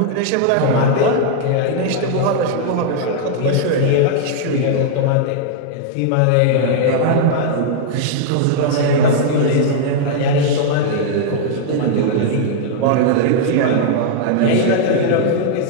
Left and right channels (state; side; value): different; both; correlation -0.01